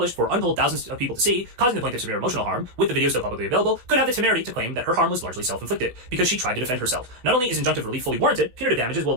for untold thousands of people to see, causing the plaintiff severe emotional harm, with the video still publicly available, could have the temerity to claim that her harm was largely self-inflicted, because she tried to defend herself. Not only is injunctive relief fully warranted, punitive damages will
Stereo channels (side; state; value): left; late; 16 ms